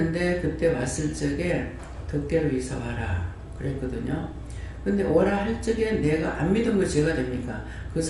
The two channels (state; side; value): identical; both; correlation 1.00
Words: 그때 왔을 적에 덕계로 이사 와라 그랬거든요. 근데 오라 할 적에 내가 안 믿은 거 제가 됩니까? 그